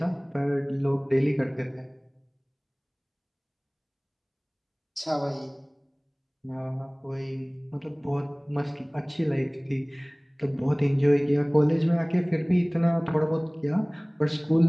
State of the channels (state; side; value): identical; both; correlation 1.00